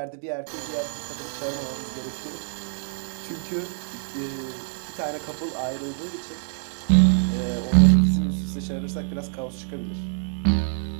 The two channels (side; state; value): left; silent; digital silence